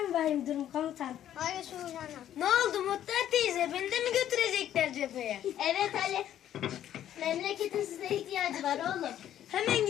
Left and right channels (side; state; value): right; quieter; 11.2 dB